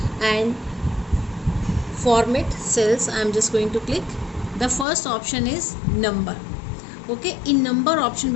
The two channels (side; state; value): right; drops out; at 4.9 s